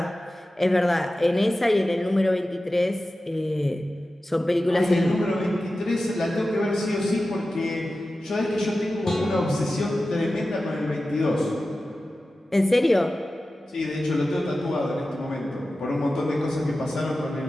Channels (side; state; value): both; normal; correlation 0.94